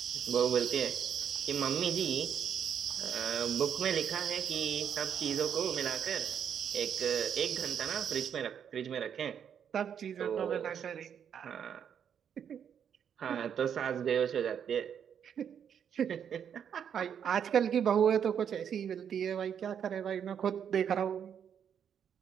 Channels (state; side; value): quieter; left; 8.3 dB